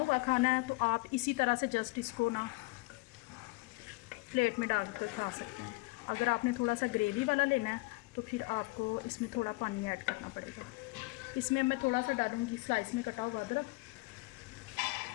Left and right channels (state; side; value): quieter; right; 24.8 dB